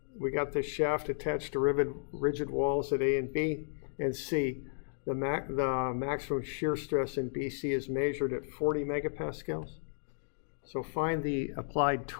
We got this shaft attached to rigid walls at A and B and C. The maximum shear stress in BC is measured at 40 megapascals. So find the applied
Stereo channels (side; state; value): right; silent; digital silence